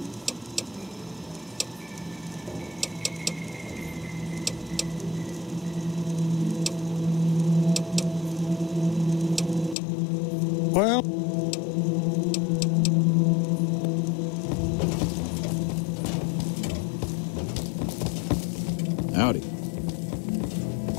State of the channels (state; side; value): drops out; right; at 9.8 s